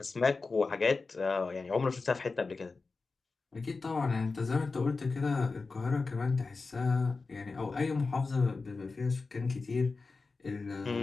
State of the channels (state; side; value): quieter; right; 4.1 dB